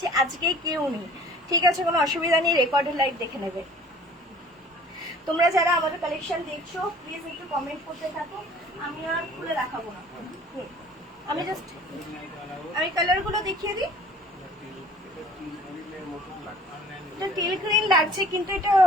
আজকে কেউ নেই, ঠিক আছে, কোনো অসুবিধা নেই, রেকর্ডেড লাইভ দেখে নেবে। তোমরা যারা আমাদের কালেকশন দেখছো প্লিজ একটু কমেন্ট করতে থাকো। আমি আর খুলে দেখাবো না, আমি জাস্ট কালার গুলো দেখিয়ে দিই। এটা টিল গ্রিন লাগছে, কিন্তু এটা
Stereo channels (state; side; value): normal; both; correlation 0.49